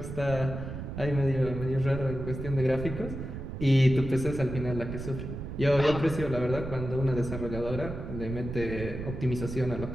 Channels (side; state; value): right; noise; rumble, 7 dB below the sound